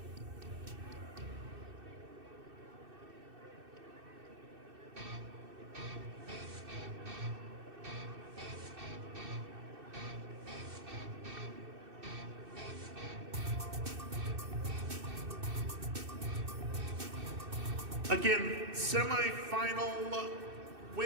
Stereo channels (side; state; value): left; late; 2.6 ms